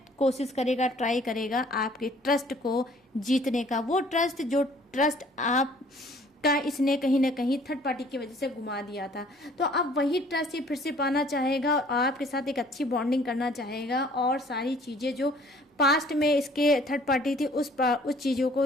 कोशिश करेगा, ट्राई करेगा आपके ट्रस्ट को जीतने का। वो ट्रस्ट जो ट्रस्ट आप का इसने कहीं ना कहीं थर्ड पार्टी की वजह से घुमा दिया था, तो अब वही ट्रस्ट ये फिर से पाना चाहेगा और आपके साथ एक अच्छी बॉन्डिंग करना चाहेगा और सारी चीज़ें जो पास्ट में इसके थर्ड पार्टी थी उस चीज़ों को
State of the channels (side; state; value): both; normal; correlation 0.56